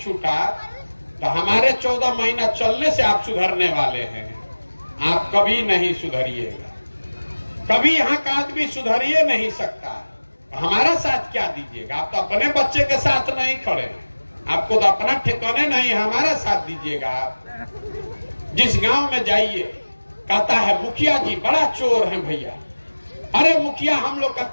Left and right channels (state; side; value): inverted; both; correlation -1.00